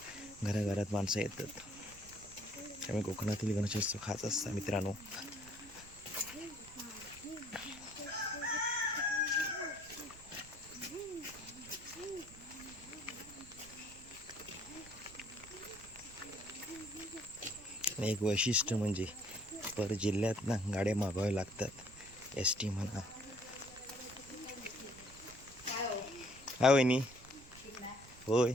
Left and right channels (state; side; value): noise; right; rumble, 20 dB below the sound